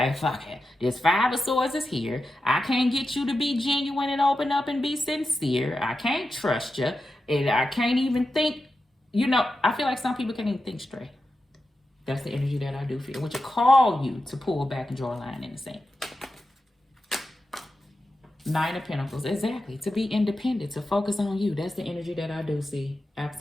fuck it, this Five of Swords is here. I can't get you to be genuine and open up and be sincere. I can't trust you. And I can't even think, you know, I feel like some people can't even think straight. That's the energy that I do feel, which will call you to pull back and draw a line in the sand. Nine of Pentacles, exactly. To be independent, to focus on you. That's the energy that I do see.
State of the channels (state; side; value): normal; both; correlation 0.90